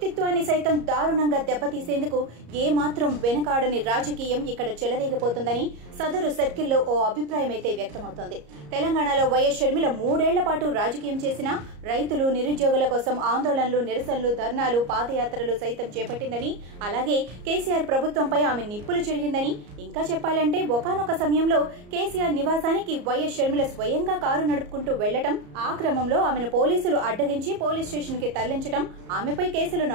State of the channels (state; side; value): late; left; 34 ms